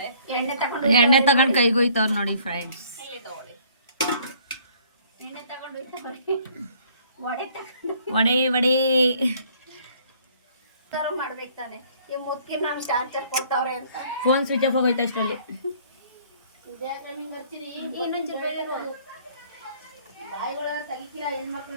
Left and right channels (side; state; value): both; inverted; correlation -0.59